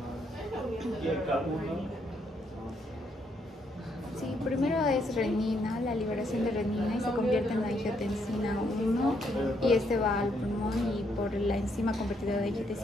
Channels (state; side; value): normal; both; correlation 0.74